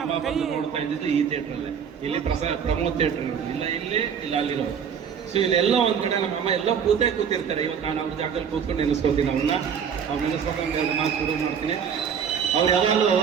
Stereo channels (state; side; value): quieter; left; 7.4 dB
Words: ಅಮ್ಮ ಬಂದು ನೋಡ್ತಾ ಇದ್ದಿದ್ದು ಈ ಥಿಯೇಟ್ರಲ್ಲೇ. ಇಲ್ಲಿ ಪ್ರಮೋದ್ ಥಿಯೇಟ್ರ್ ಇಲ್ಲ, ಇಲ್ಲಿ ಇಲ್ಲ ಅಲ್ಲಿರೋ. ಸೊ ಇಲ್ಲೆಲ್ಲೋ ಒಂದ್ ಕಡೆ ನಮ್ಮಮ್ಮ ಎಲ್ಲೋ ಕೂತಿರ್ತಾರೆ. ಇವತ್ತು ನಾನು ಅವ್ರ ಜಾಗದಲ್ಲಿ ಕೂತ್ಕೊಂಡು ನೆನೆಸ್ಕೋತೀನಿ ಅವ್ರನ್ನ. ಅವ್ರು ನೆನೆಸ್ಕೊಂಡು ನಾನು ಶುರು ಮಾಡ್ತೀನಿ. ಅವ್ರು ಯಾವಾಗಲೂ